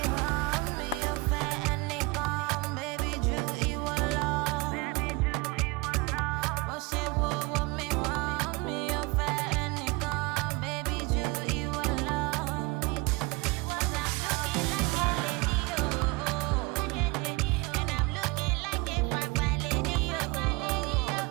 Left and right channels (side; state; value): left; quieter; 23.0 dB